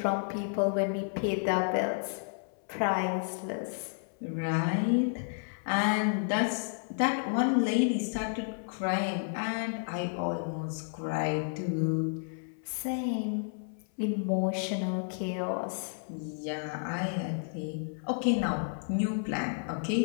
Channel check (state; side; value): silent; right; 57 dB below the other